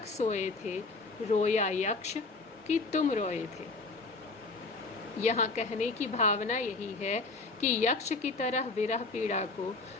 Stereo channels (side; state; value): right; quieter; 3.6 dB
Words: सोए थे, रोया यक्ष कि तुम रोए थे? यहाँ कहने की भावना यही है कि यक्ष की तरह विरह पीड़ा को